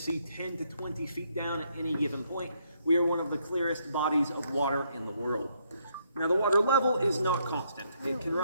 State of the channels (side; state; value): both; inverted; correlation -0.73